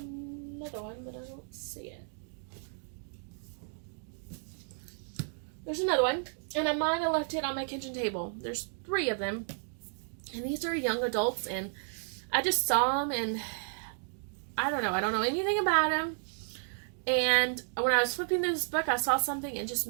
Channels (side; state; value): left; silent; 56 dB below the other